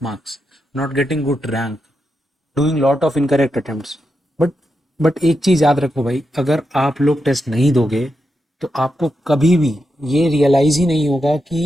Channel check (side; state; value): both; normal; correlation 0.86